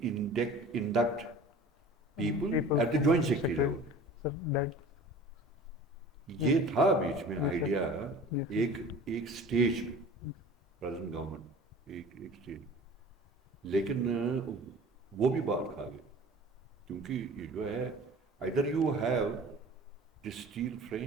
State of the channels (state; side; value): normal; both; correlation 0.42